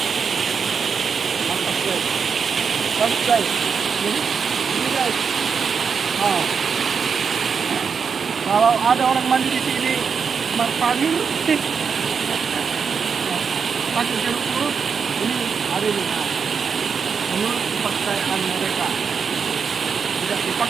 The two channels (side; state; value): left; quieter; 6.1 dB